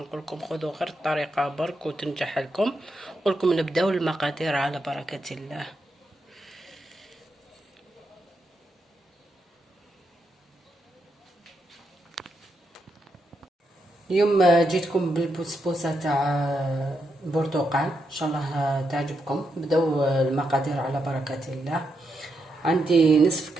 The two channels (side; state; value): both; normal; correlation 0.83